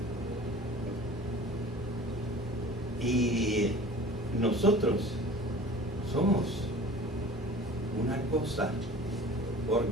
Y nosotros somos una cosa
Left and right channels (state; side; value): normal; both; correlation 0.43